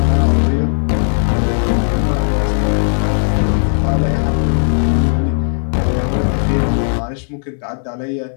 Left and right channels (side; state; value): right; silent; 64 dB below the other